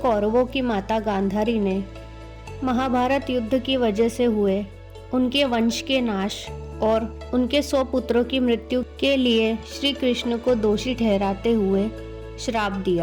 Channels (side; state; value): both; identical; correlation 1.00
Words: कौरवों की माता गांधारी ने महाभारत युद्ध की वजह से हुए उनके वंश के नाश और उनके 100 पुत्रों की मृत्यु के लिए श्री कृष्ण को दोषी ठहराते हुए श्राप